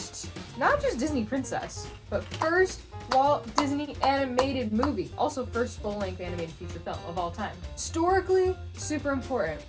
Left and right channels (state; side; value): identical; both; correlation 1.00